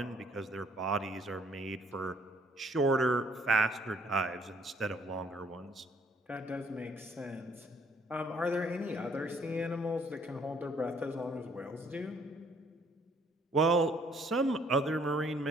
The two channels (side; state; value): both; normal; correlation 0.63